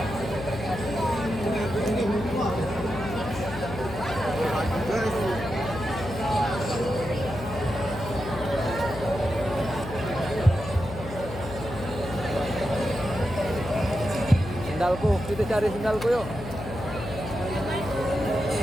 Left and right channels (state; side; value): noise; left; hum, 10 dB below the sound